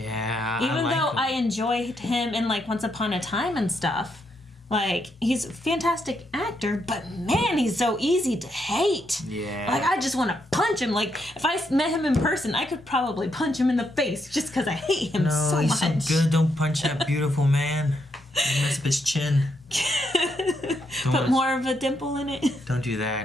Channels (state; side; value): normal; both; correlation 0.79